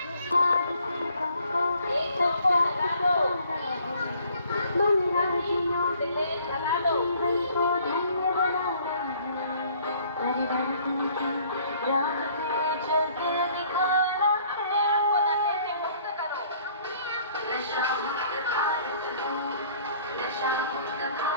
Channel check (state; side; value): inverted; both; correlation -0.59